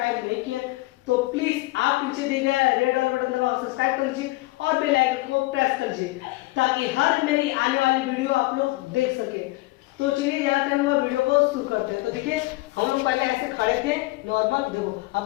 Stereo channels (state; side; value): quieter; right; 21.0 dB